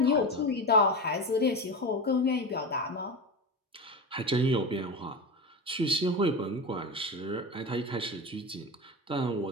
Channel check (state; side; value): normal; both; correlation 0.23